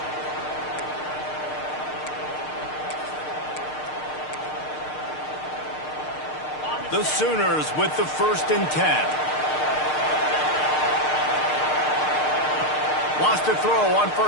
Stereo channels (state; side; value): late; right; 6.6 ms